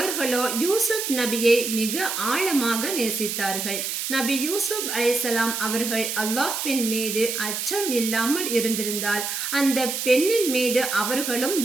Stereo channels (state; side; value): noise; right; hiss, 3 dB below the sound